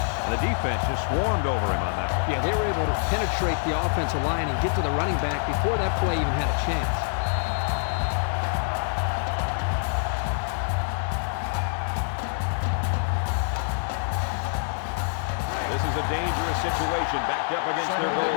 And the defense just swarmed over him on that one. Yeah, they were able to penetrate the offensive line and get to the running back before that play even had a chance. This is a dangerous situation backed up against their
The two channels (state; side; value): silent; right; 61 dB below the other